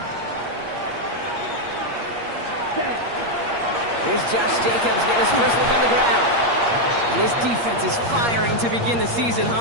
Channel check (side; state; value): left; late; 8.5 ms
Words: Here's Josh Jacobs getting his first look on the ground. And his defense is firing to begin the season,